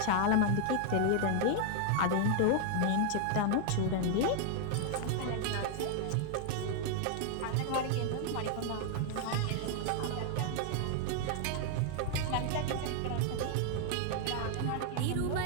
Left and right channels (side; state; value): both; different; correlation 0.00